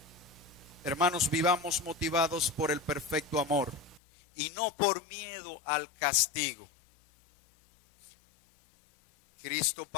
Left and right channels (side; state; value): right; drops out; at 4.0 s